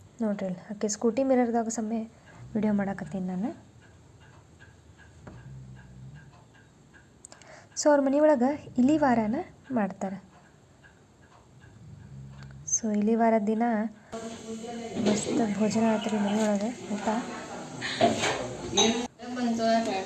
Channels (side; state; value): both; identical; correlation 1.00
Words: ನೋಡ್ರಿ ಅಲ್ಲಿ ಆಕೆ ಸ್ಕೂಟಿ ಮಿರರ್ದಾಗ ಸಮಯ ವಿಡಿಯೋ ಮಾಡಾಕತ್ತೀನಿ ನಾನು. ಸೊ ಅವ್ರ ಮನೆಯೊಳಗೆ ಇಲಿ ವಾರನ ಮಾಡ್ತಾರೆ. ಸೊ ಇಲಿ ವಾರದ ದಿನ ಮಸ್ತ್ ಭೋಜನ ಆಯ್ತು ಮನೆಯೊಳಗೆ, ಊಟ.